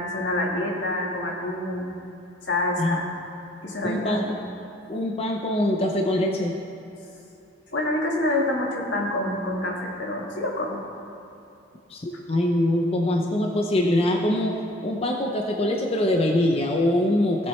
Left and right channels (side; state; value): both; normal; correlation 0.55